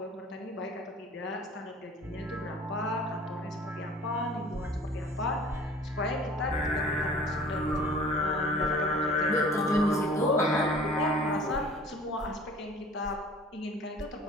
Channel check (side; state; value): both; normal; correlation 0.47